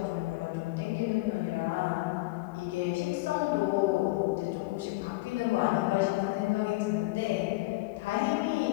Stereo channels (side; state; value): right; quieter; 21.9 dB